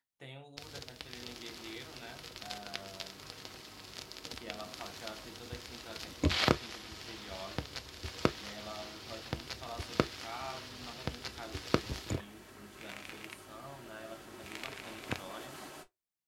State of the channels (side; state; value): both; identical; correlation 1.00